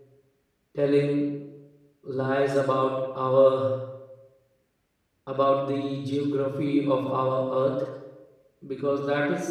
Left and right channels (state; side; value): identical; both; correlation 1.00